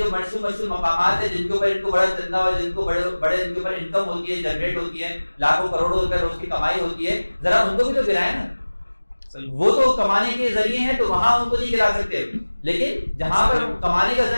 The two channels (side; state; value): both; inverted; correlation -1.00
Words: مشہور مقامات ہیں جن کے اوپر ان کو بڑا چندہ اور جن کو بڑے ان کے اوپر انکم ہوتی ہے، جنریٹ ہوتی ہے، لاکھوں کروڑوں روپے روز کی کمائی ہوتی ہے، ذرا ان کو بھی تو گرائیں نا۔ وہ تو کمانے کے ذریعے ہیں تو وہاں ان کو نہیں گرا سکتے، لیکن جہاں پر کمانے کا